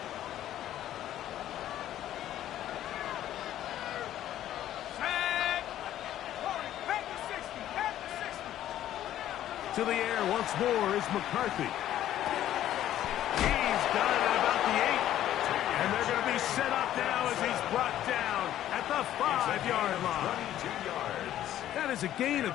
To the air once more is McCarthy. He's got it at about the 8. And they're going to be set up now as he's brought down at the 5-yard line. 22 yards. That is a gain of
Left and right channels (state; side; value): quieter; right; 12.3 dB